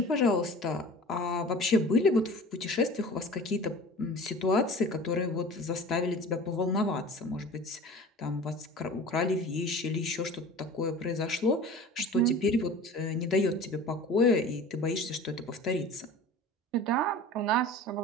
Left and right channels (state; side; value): normal; both; correlation 0.39